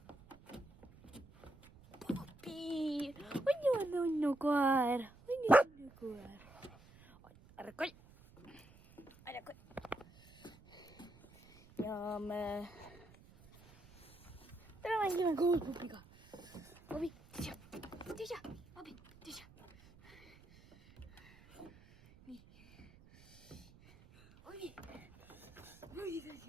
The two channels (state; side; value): noise; right; rumble, 23 dB below the sound